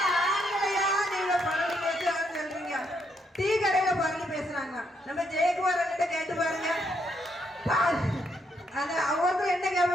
ஆண்களையா நீங்க பரவலி பேசுறாங்கன்னு சொல்றீங்க? டீ கடையில பரவலி பேசுறாங்க. நம்ம ஜெயக்குமார் கிட்ட கேட்டு பாருங்க, ஒருத்தர் என்ன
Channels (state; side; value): normal; both; correlation 0.76